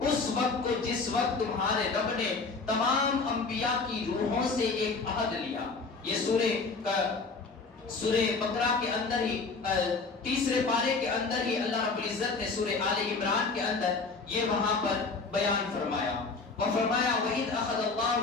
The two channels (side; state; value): right; quieter; 4.2 dB